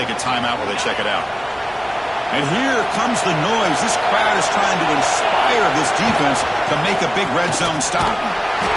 a timeout while they check it out. And here comes the noise. This crowd is trying to inspire this defense to make a big red zone stop.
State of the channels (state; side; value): identical; both; correlation 1.00